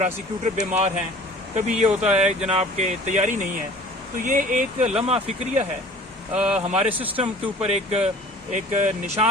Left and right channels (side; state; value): both; normal; correlation 0.47